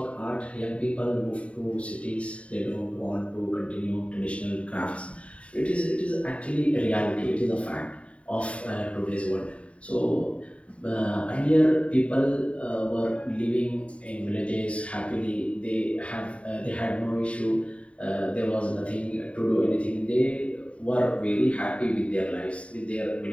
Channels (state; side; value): late; right; 0.063 ms